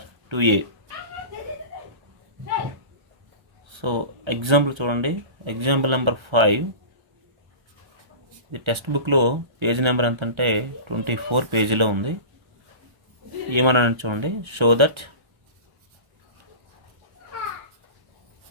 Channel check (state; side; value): late; left; 1.3 ms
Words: 2A. So example చూడండి. Example number 5. ఇది టెక్స్ట్ బుక్లో పేజ్ నెంబర్ ఎంత అంటే 24 పేజీలో ఉంది. ఏమన్నా చూడండి. Show